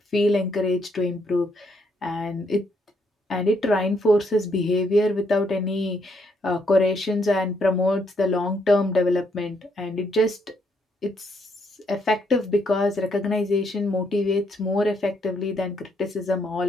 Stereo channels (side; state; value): both; normal; correlation 0.73